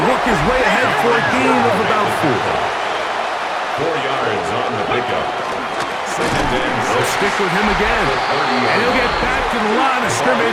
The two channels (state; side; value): identical; both; correlation 1.00